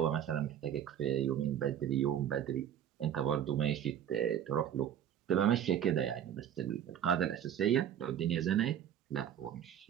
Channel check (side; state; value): left; quieter; 9.8 dB